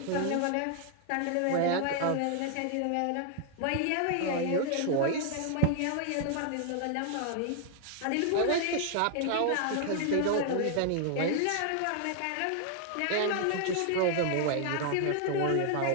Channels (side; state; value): both; different; correlation 0.00